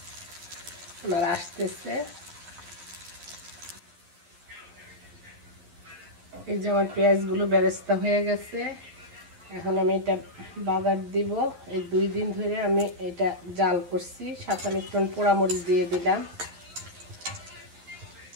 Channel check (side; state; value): left; late; 11 ms